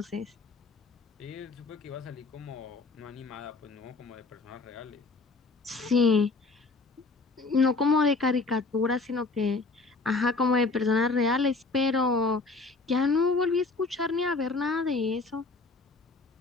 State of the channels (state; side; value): quieter; right; 3.8 dB